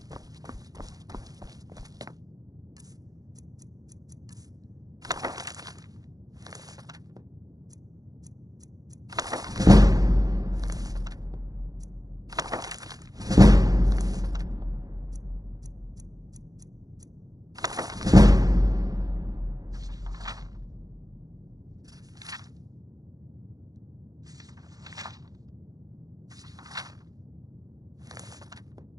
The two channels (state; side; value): late; left; 0.18 ms